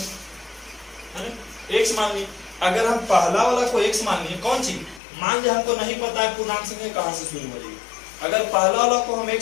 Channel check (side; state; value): right; drops out; at 5.0 s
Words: ना? x मान लिए। अगर हम पहला वाला को x मान लिए, कौन चीज मान लिया हमको नहीं पता है पूर्णांक संख्या कहां से शुरू हो रही है। अगर पहला वाला को हम